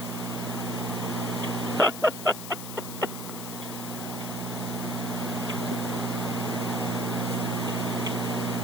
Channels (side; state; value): left; noise; hiss, 9 dB below the sound